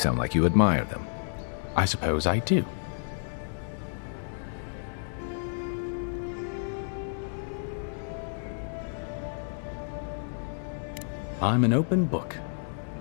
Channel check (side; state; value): right; silent; 58 dB below the other